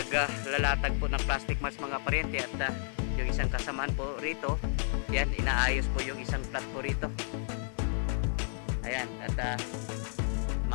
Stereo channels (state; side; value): silent; right; digital silence